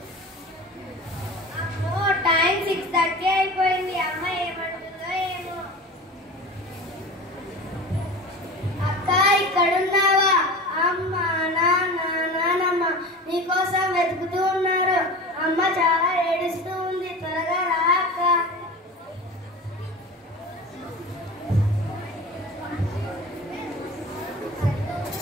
అమ్మో, టైం 6:30 అయిపోయింది. అమ్మ ఏమంటుందో ఏమో. అక్క, ఇక్కడున్నావా? అమ్మ, నాన్న, నానమ్మ నీకోసం వెతుకుతూ ఉన్నారు. అమ్మ చాలా ఏడుస్తూ ఉంది. త్వరగా రా అక్క.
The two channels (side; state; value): both; normal; correlation 0.34